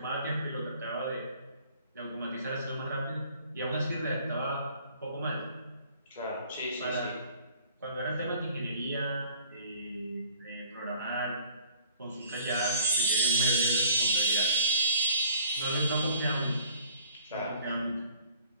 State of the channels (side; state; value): both; inverted; correlation -0.53